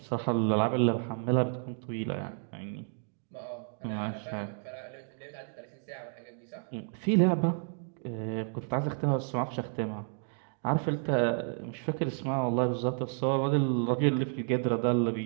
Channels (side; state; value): left; silent; 57 dB below the other